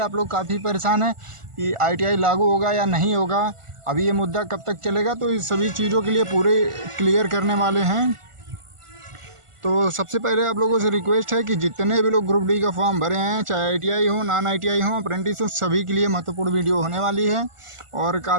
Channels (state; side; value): late; left; 1.4 ms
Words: लोग काफ़ी परेशान हैं कि ITI लागू होगा या नहीं होगा, अभी ये मुद्दा कब तक चलेगा। तो इस सभी चीज़ों के लिए पूरे क्लियर करने वाले हैं। तो सबसे पहले आप लोगों से रिक्वेस्ट है कि जितने भी लोग ग्रुप डी का फॉर्म भरे हैं, चाहे ITI हो, नॉन ITI हो, अप्रेंटिस हो, सभी के लिए महत्वपूर्ण वीडियो होने वाली है और